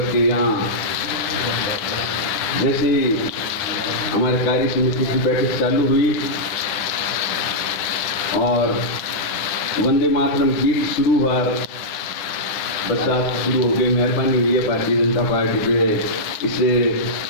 कि यहाँ जैसे हमारे कार्य समिति की बैठक चालू हुई और वंदे मातरम गीत शुरू हुआ, बरसात शुरू हो गई। मेहरबानी हुई है भारतीय जनता पार्टी पे, इसे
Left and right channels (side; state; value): right; late; 9.8 ms